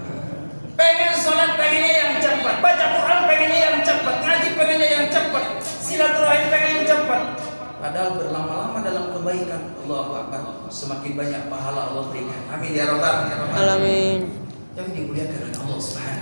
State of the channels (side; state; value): both; inverted; correlation -1.00